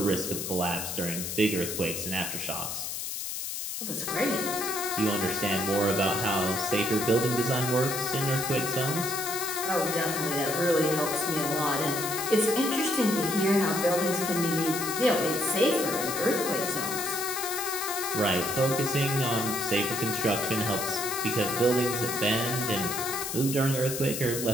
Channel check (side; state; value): left; noise; hiss, 5 dB below the sound